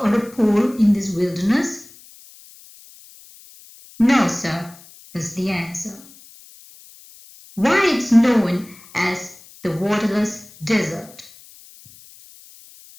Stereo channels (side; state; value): left; noise; hiss, 23 dB below the sound